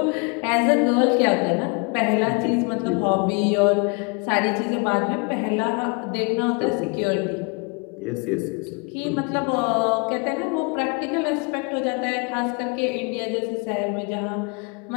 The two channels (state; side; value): quieter; right; 33.2 dB